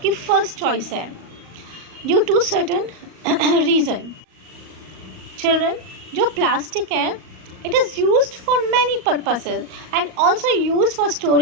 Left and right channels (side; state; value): left; late; 38 ms